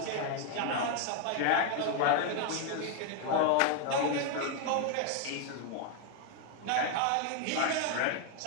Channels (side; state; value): both; different; correlation 0.01